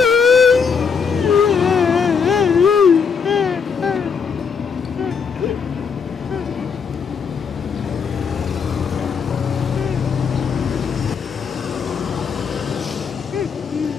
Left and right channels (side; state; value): right; quieter; 6.1 dB